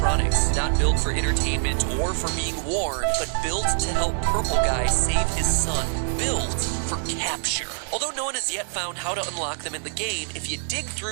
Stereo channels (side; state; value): left; silent; digital silence